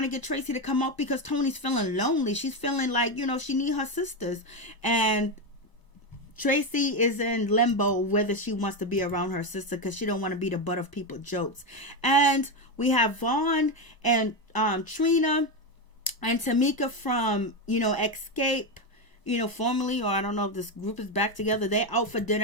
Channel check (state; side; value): late; right; 1.0 ms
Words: to get Tracy to come up because Toni's feeling lonely. She's feeling like, she need her sisters. And Tracy is in limbo whether she wants to be around her sister because she don't want to be the butt of people's jokes. And we have Vaughn and Trina and Tamika from, Escape. Formally, or I don't know if this group is back together. They're out for